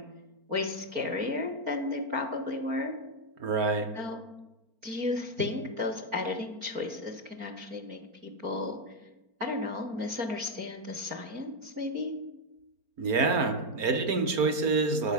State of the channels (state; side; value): late; left; 4.4 ms